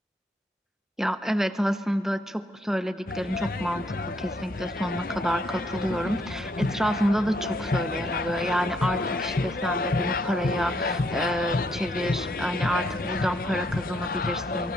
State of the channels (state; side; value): normal; both; correlation 0.72